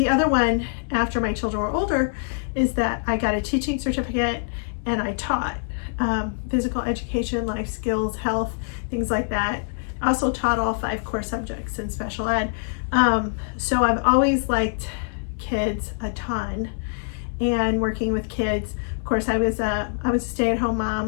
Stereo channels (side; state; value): right; silent; 62 dB below the other